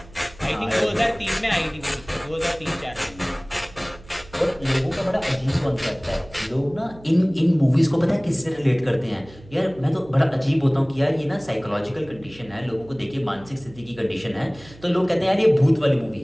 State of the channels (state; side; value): noise; right; hum, 21 dB below the sound